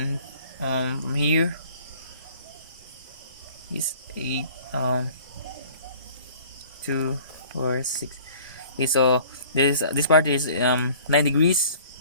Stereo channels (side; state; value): both; inverted; correlation -0.50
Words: from here is 8 2 4 6. Okay, so this part is 9 degrees.